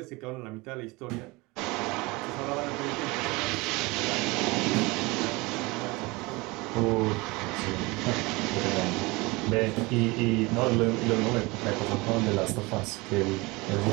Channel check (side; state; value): left; quieter; 23.9 dB